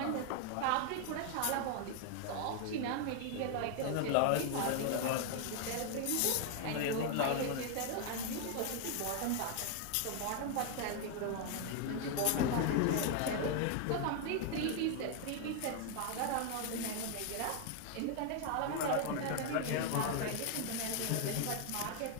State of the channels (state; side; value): different; both; correlation 0.00